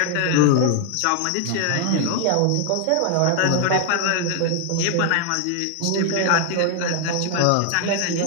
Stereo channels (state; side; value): different; both; correlation 0.00